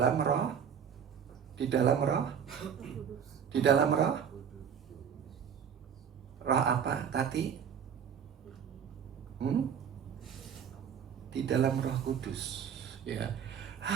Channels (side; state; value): left; quieter; 7.8 dB